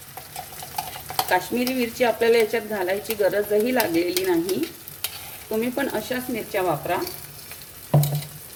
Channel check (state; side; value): identical; both; correlation 1.00